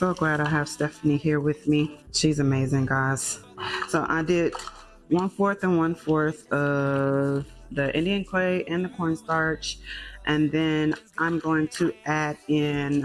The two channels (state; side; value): identical; both; correlation 1.00